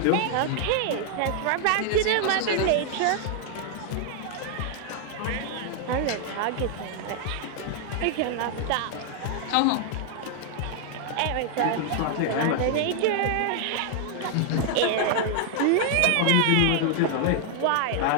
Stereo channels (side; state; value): both; different; correlation 0.00